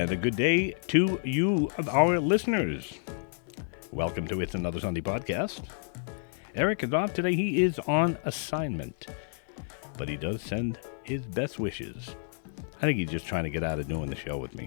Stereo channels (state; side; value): silent; right; 58 dB below the other